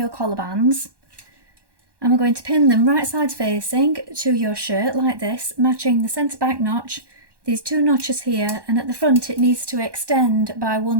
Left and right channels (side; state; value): left; late; 1.1 ms